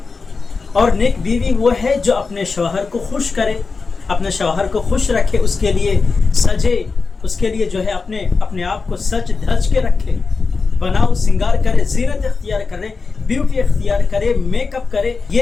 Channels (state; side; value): quieter; right; 4.5 dB